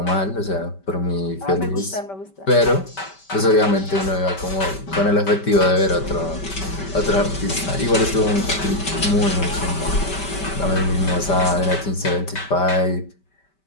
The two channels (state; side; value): late; right; 5.2 ms